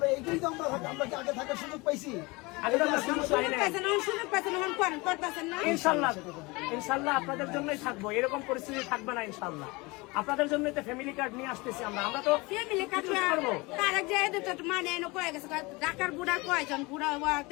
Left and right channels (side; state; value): right; quieter; 24.7 dB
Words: এইটাই তো আমরা কি আগে থাকার সুযোগ পাইছি? ইনশাল্লাহ আপনাদের জন্যই থাকবো, এরকম পরিস্থিতি থাকবে না ইনশাল্লাহ। আপনাদের জন্য তো ফ্যামিলি কার্ড নিয়ে আসতেছি আমরা তো ফ্যামিলি কার্ড করবো। তারেক যে মানে কয়ে গেছে ঢাকার বুড়া কয়জন বুড়া